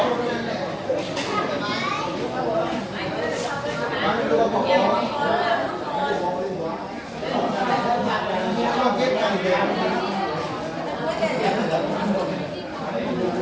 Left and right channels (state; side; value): identical; both; correlation 1.00